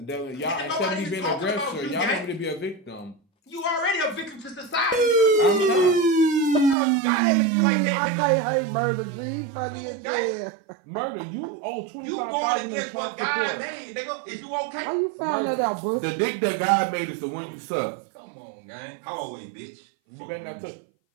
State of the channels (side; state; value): left; drops out; at 6.8 s